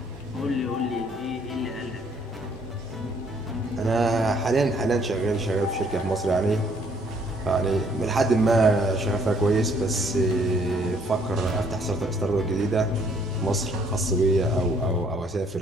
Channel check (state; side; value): normal; both; correlation 0.64